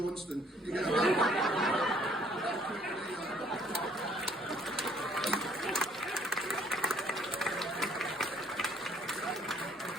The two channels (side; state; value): both; normal; correlation 0.62